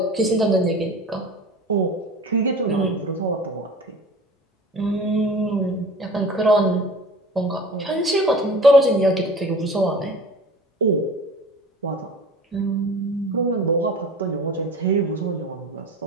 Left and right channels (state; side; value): normal; both; correlation 0.40